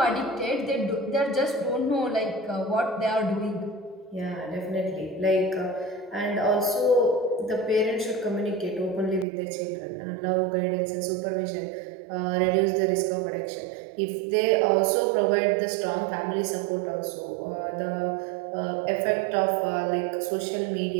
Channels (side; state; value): left; drops out; at 9.2 s